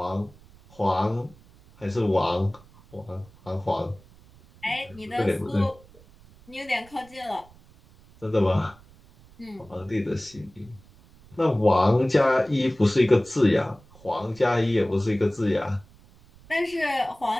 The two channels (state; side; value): noise; right; rumble, 26 dB below the sound